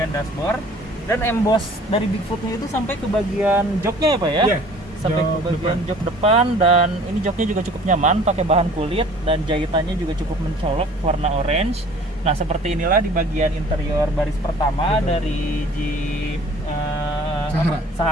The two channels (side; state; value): both; normal; correlation 0.50